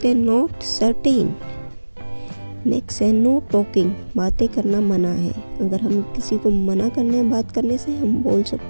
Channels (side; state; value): both; inverted; correlation -1.00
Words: हैं नॉट सर्टेन। नेक्स्ट है नो टॉकिंग, बातें करना मना है, अगर हम किसी को मना करना है बात करने से हम बोल